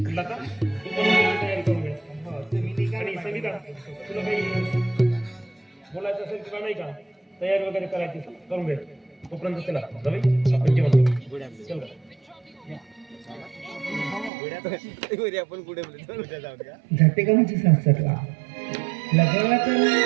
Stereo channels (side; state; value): left; drops out; at 14.3 s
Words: लता, तू पण तयारी करून घे. आणि संगीता, तुला काही बोलायचं असेल तुला नाही का, तयारी वगैरे करायची करून घे. तोपर्यंत चला रवी, आपण जेवण करू. चल रे. जाते का म्हणजे सासरला लग्नाला तर